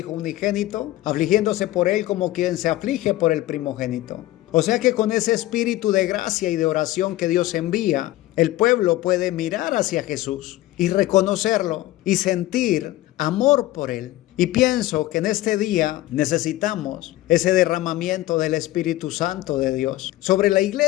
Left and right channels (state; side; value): quieter; right; 16.2 dB